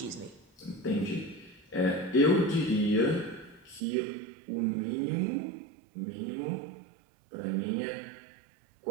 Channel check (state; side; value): drops out; left; at 3.8 s